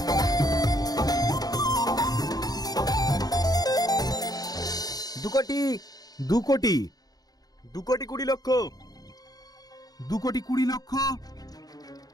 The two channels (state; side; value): late; right; 0.19 ms